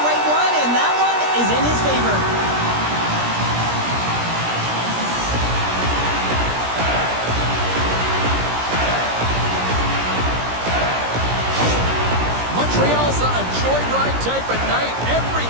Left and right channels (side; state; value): left; late; 17 ms